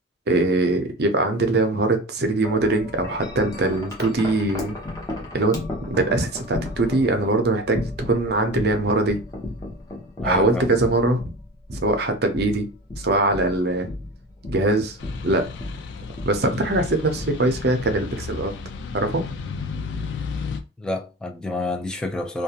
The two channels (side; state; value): both; normal; correlation 0.33